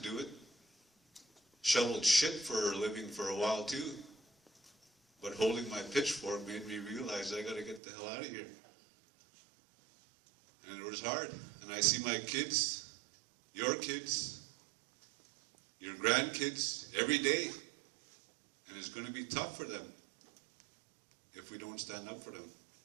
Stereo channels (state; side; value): drops out; left; at 7.8 s